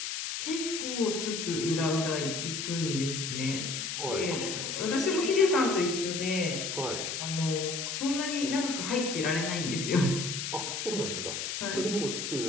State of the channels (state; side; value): noise; left; hiss, 3 dB below the sound